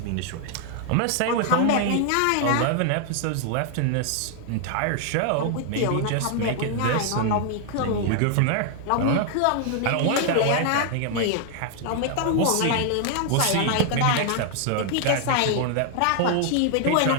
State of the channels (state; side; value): different; both; correlation 0.00